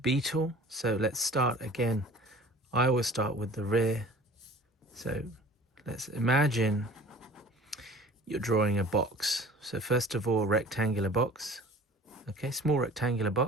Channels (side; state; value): both; normal; correlation 0.45